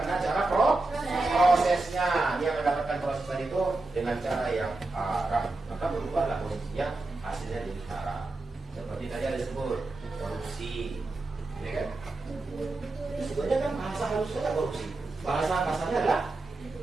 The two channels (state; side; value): quieter; left; 3.1 dB